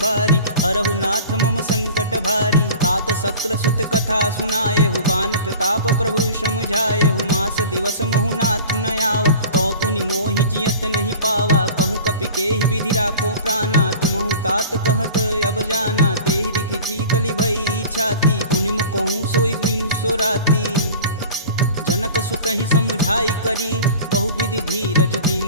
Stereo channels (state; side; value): inverted; both; correlation -0.39